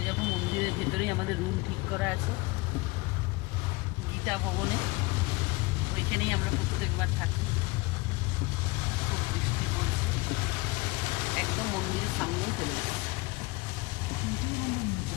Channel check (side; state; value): right; quieter; 23.9 dB